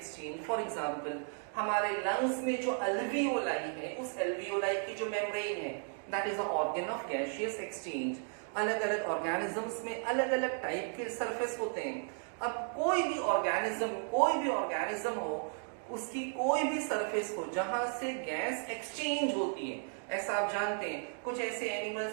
For example, हमारे लंग्स में जो अल्वियोलाई है, उस अल्वियोलाई की जो मेम्ब्रेन है, that is a organ of gaseous exchange. अलग अलग ऑर्गेनिजम्स में अलग अलग टाइप के सरफेस होते हैं। अब कोई भी ऑर्गेनिज्म हो, उसकी कोई भी सरफेस हो जहां से गैस एक्सचेंज होती है, ऐसा आप जानते हैं। कुछ ऐसे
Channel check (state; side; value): silent; left; 55 dB below the other